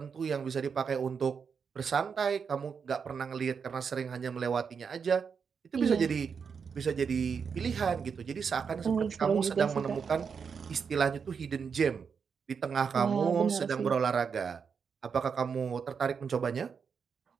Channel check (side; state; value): left; quieter; 6.2 dB